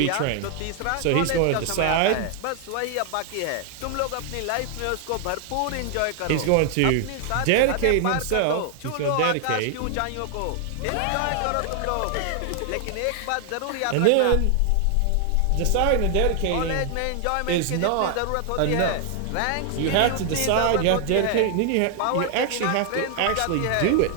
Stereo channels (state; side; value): different; both; correlation 0.00